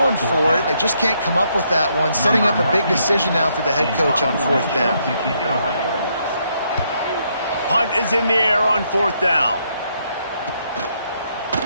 for it. They just can't come up with that one. Setting up a big decision now for the head coach on 4th down. Punt is in the air on 4th down.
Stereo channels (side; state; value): both; inverted; correlation -0.74